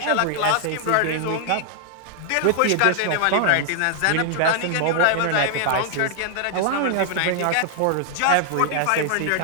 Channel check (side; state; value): both; different; correlation 0.00